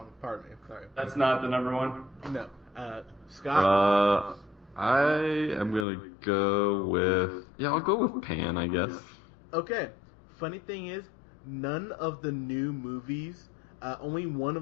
Pardon me. Sorry. That's not the number 1? No. Scott? I am going to go with... Yeah, I'll go with Pan, I guess. Okay. Funny thing is, none of the new movies, only one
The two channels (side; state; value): right; drops out; at 5.9 s